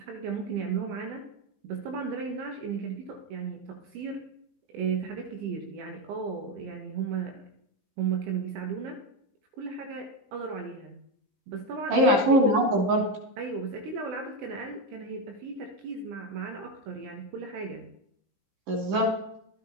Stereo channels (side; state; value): left; late; 15 ms